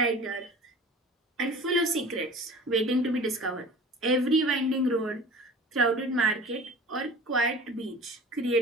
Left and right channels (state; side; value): normal; both; correlation 0.40